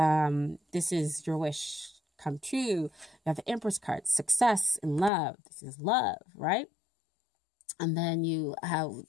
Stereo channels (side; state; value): right; drops out; at 5.1 s